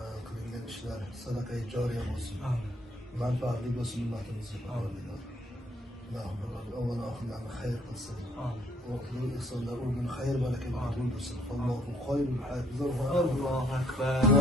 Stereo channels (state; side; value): normal; both; correlation 0.66